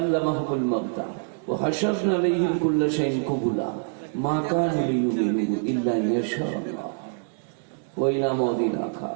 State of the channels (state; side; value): silent; left; digital silence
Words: মাউতা ওয়া হাশারনা আলাইহিম কুল্লা শাইইন কুবুলা মা কানু লিয়ুমিনু ইল্লা ইয়াশাআল্লাহ ওয়া ইলা মাউদিন